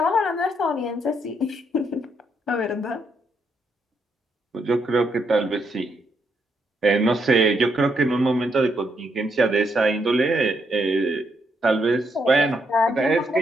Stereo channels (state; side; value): normal; both; correlation 0.77